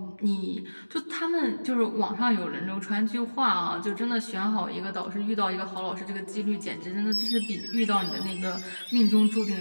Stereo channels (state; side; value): inverted; both; correlation -1.00